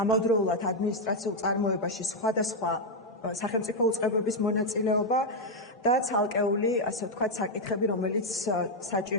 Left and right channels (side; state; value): both; normal; correlation 0.01